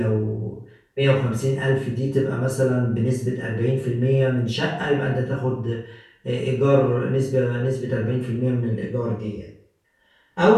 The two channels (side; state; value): both; identical; correlation 1.00